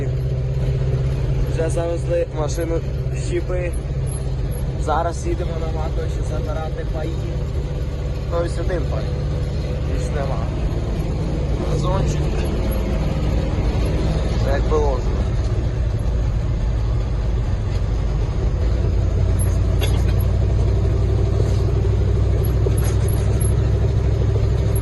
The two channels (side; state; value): both; identical; correlation 1.00